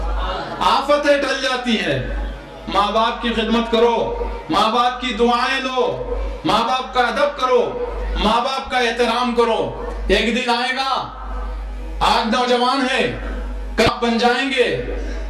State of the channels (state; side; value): identical; both; correlation 1.00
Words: آفتیں ٹل جاتی ہے. ماں باپ کی خدمت کرو, ماں باپ کی دعائیں لو, ماں باپ کا ادب کرو, ماں باپ کا احترام کرو. ایک دن آئے گا, آج نوجوان ہیں, کب بن جائیں گے,